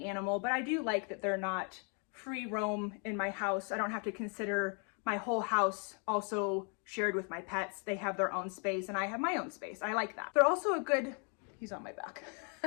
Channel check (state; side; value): quieter; right; 38.7 dB